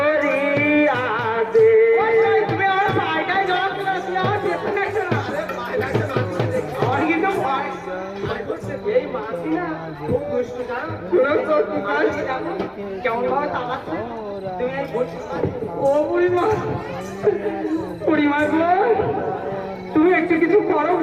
দে। তুমি আমার পায়টায় জল দিলে, তুমি আমার পেছনে একটা না। আরে পায় লাগছে না, আমার কিন্তু ভয় করছে। এই মাছি না খুব দুষ্টু, জানো? শোনো তো, তোমার কেমন ভাবে তাকাচ্ছে। তুমি এই ও বুড়িমা, বুড়িমা গো, তুমি একটু কিছু করো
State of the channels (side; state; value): both; identical; correlation 1.00